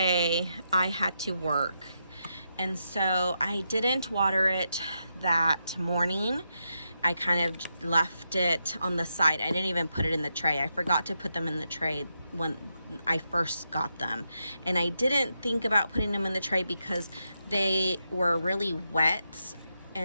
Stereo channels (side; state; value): both; inverted; correlation -0.84